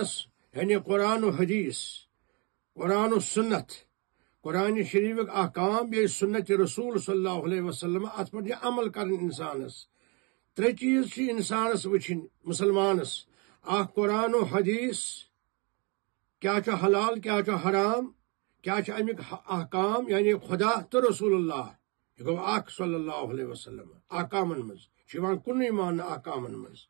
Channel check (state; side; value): quieter; left; 31.6 dB